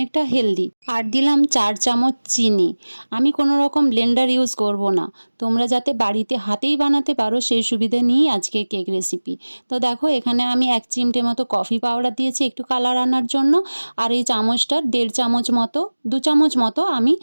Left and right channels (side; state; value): both; inverted; correlation -1.00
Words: হেলদি। আর দিলাম 4 চামচ চিনি। আমি কোনো রকম ব্লেন্ডার ইউজ করব না। তোমরা যাতে বাড়িতে হাতেই বানাতে পারো সেই সুবিধে নিয়েই আজকে কেক রেসিপি। তো দেখো এখানে আমি 1 চিমটে মতো কফি পাউডার দিয়েছি একটু কালার আনার জন্য। আর এই চামচটার 1.5 চামচ মতো 2 চামচ মতো আমি